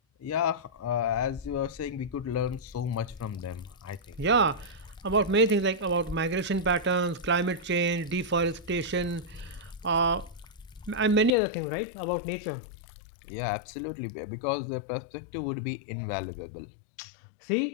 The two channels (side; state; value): right; drops out; at 11.3 s